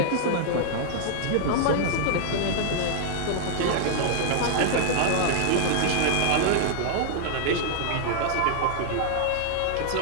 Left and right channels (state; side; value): different; both; correlation -0.01